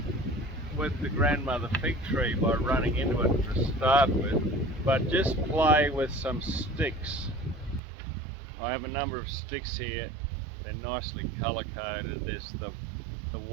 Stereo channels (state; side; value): drops out; left; at 7.8 s